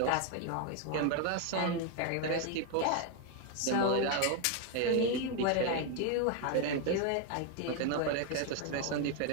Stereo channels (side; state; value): both; different; correlation 0.01